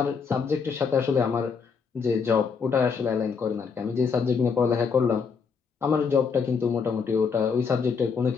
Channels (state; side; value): quieter; right; 5.7 dB